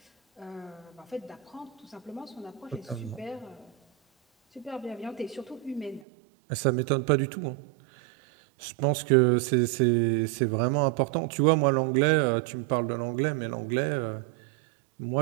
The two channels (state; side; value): drops out; left; at 6.0 s